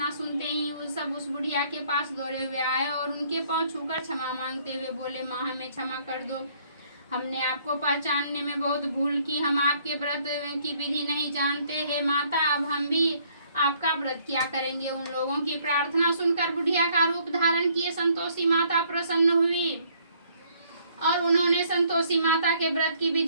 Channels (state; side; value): inverted; both; correlation -0.64